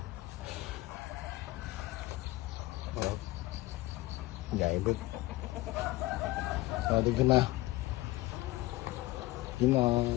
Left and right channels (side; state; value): right; quieter; 18.7 dB